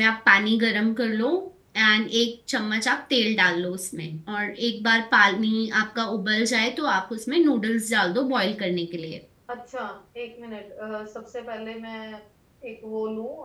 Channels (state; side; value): identical; both; correlation 1.00